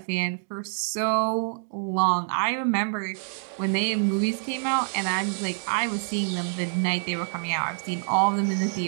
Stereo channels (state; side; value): silent; left; digital silence